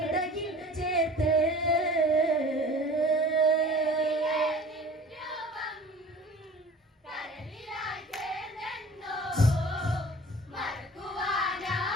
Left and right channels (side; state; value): both; normal; correlation 0.44